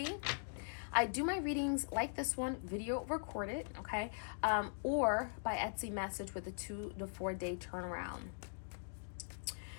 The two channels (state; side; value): silent; right; digital silence